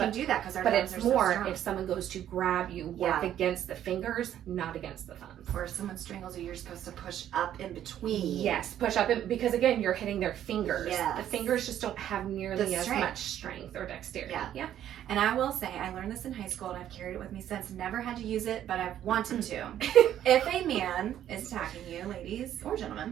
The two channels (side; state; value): left; quieter; 11.1 dB